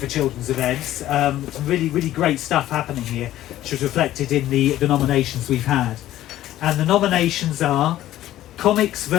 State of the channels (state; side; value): quieter; right; 13.7 dB